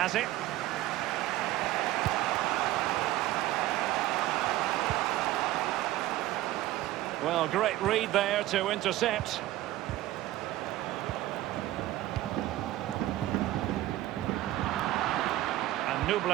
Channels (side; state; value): left; quieter; 15.5 dB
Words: it. Well, great read there to intercept. And